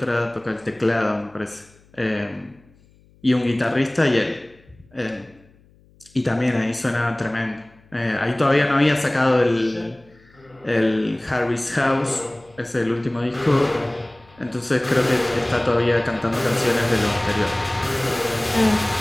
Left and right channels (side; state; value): left; noise; hum, 30 dB below the sound